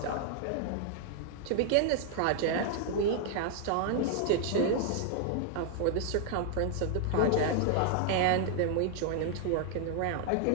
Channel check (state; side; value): different; both; correlation 0.00